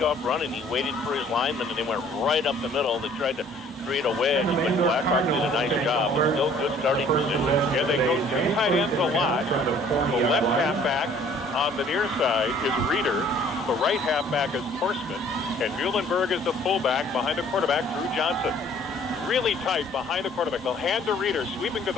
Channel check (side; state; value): both; normal; correlation 0.56